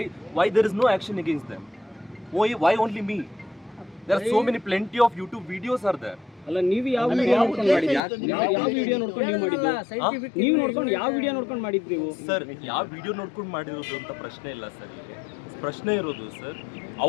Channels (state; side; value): drops out; right; at 8.0 s